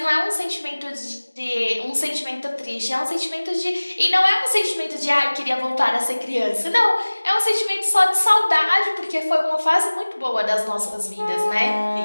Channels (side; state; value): both; inverted; correlation -1.00